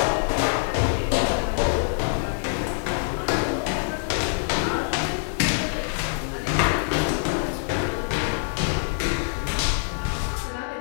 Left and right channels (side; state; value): right; silent; 62 dB below the other